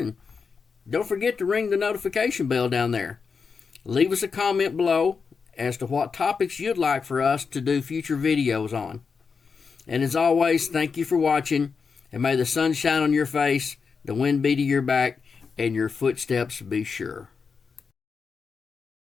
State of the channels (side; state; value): right; quieter; 5.4 dB